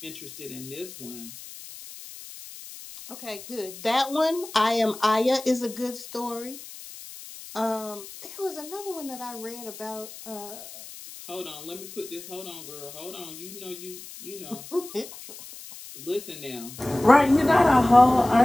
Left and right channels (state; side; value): noise; left; hiss, 15 dB below the sound